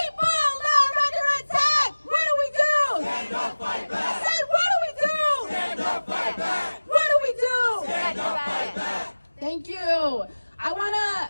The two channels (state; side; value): inverted; both; correlation -1.00